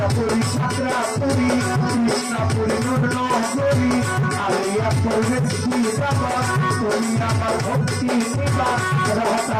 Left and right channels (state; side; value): identical; both; correlation 1.00